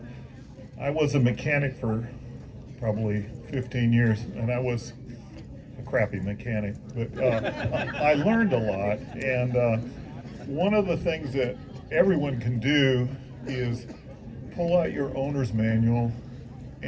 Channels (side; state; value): both; identical; correlation 1.00